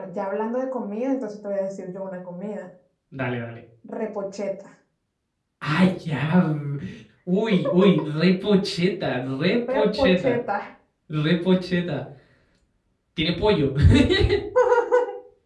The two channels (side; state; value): both; identical; correlation 1.00